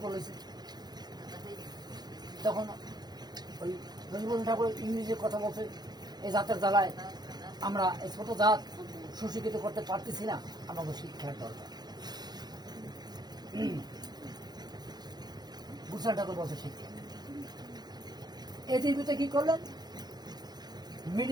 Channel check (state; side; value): late; left; 0.20 ms